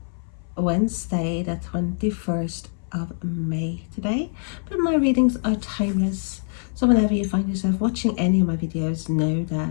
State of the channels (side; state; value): right; silent; 59 dB below the other